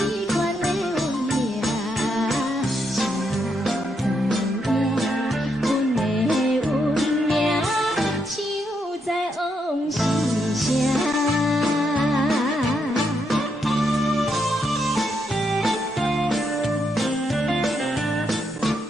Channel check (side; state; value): both; normal; correlation 0.79